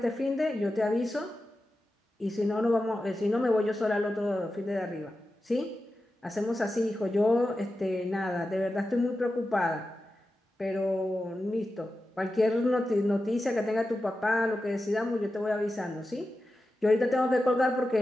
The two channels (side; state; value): both; normal; correlation 0.92